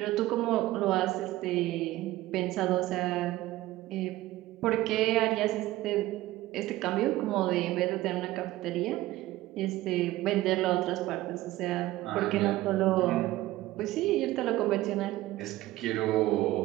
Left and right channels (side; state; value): left; quieter; 16.6 dB